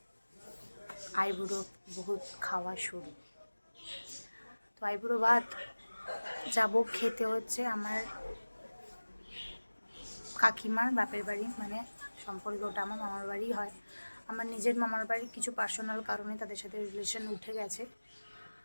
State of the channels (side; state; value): both; inverted; correlation -1.00